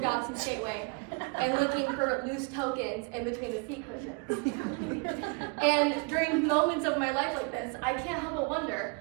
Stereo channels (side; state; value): left; quieter; 31.3 dB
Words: Gateway and looking for loose tokens in between the seat cushions. And during moments of my life like this, I can't help but wonder,